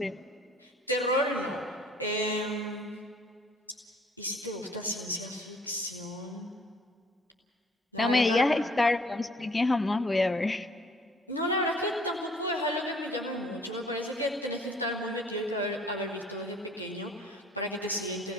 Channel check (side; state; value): both; normal; correlation 0.57